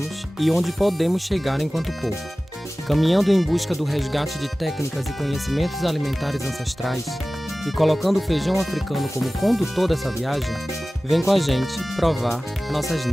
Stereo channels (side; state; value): both; normal; correlation 0.97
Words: e onde podemos chegar enquanto povo. Caminhando em busca do resgate de técnicas e conhecimentos alimentares ancestrais e colocando o feijão africano como condutor dessa viagem, vem com a gente provar nossas